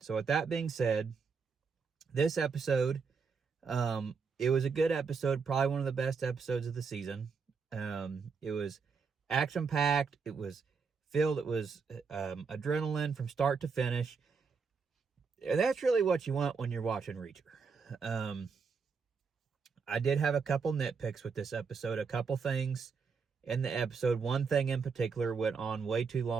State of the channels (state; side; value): quieter; left; 5.4 dB